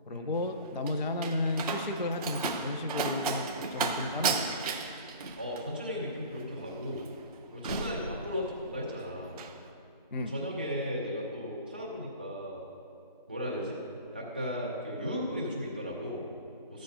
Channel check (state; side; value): inverted; both; correlation -0.37